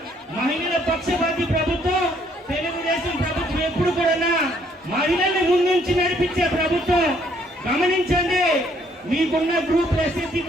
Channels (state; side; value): normal; both; correlation 0.66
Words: మహిళల పక్షపాతి ప్రభుత్వం. తెలుగుదేశం ప్రభుత్వం ఎప్పుడు కూడా మహిళల్ని ముందుంచి నడిపించే ప్రభుత్వం. గమనించండి, మీకున్న గ్రూప్ ఎస్ఎస్సీ